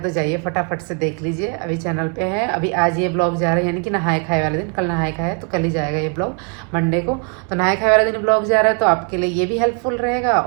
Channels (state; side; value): quieter; left; 37.8 dB